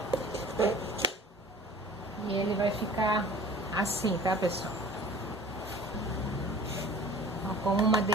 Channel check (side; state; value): both; normal; correlation 0.45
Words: E ele vai ficar assim, tá, pessoal? Com uma